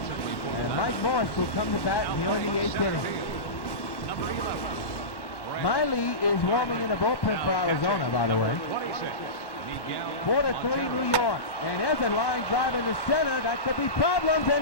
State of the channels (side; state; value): right; late; 1.1 ms